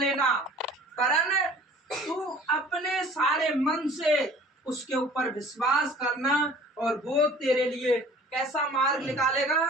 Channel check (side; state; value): both; normal; correlation 0.48